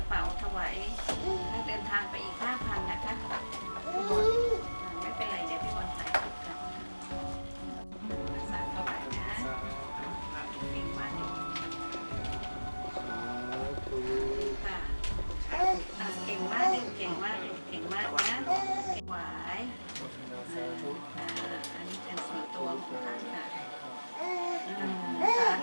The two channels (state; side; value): inverted; both; correlation -1.00